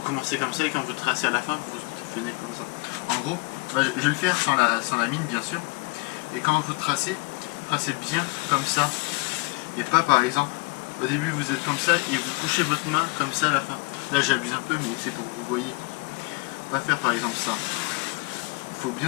commencez comme ça et quand vous tracez à la fin, vous venez comme ça. En gros, bah, je vais le faire sans la mine, bien sûr. Et quand vous tracez bien comme ça et pas, par exemple, au début vous êtes comme ça et vous couchez votre main comme ça à la fin. Là, j'abuse un peu, mais c'est pour que vous voyez. Pas faire, par exemple, ça. Il faut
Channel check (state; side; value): quieter; right; 27.2 dB